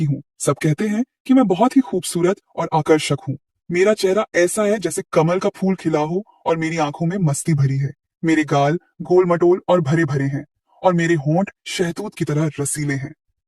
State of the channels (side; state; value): both; identical; correlation 1.00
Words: हूँ। सब कहते हैं कि मैं बहुत ही खूबसूरत और आकर्षक हूँ। मेरा चेहरा ऐसा है जैसे कमल का फूल खिला हो और मेरी आंखों में मस्ती भरी है। मेरे गाल गोल मटोल और भरे भरे हैं और मेरे होंठ शहतूत की तरह रसीले हैं।